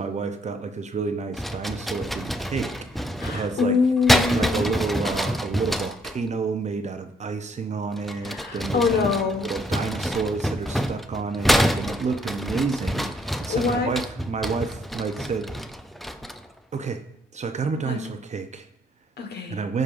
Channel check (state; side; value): normal; both; correlation 0.70